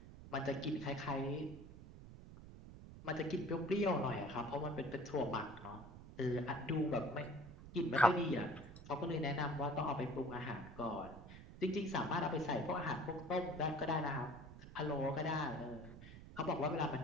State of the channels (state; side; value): noise; right; rumble, 15 dB below the sound